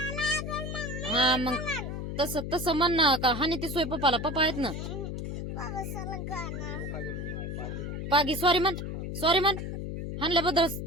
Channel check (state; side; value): noise; left; hum, 5 dB below the sound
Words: हा मग तस तसं म्हण ना का हानी ती सोय पप्पाला. पप्पा आहेत ना. पागी सॉरी म्हण. सॉरी म्हण. हाणल्याबद्दल